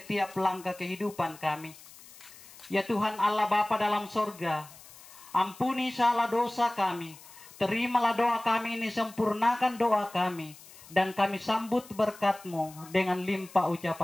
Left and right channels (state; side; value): noise; left; hiss, 20 dB below the sound